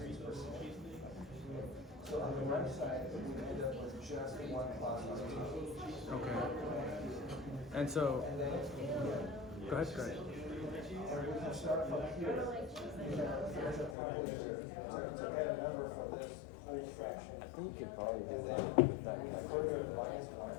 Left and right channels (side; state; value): right; drops out; at 14.0 s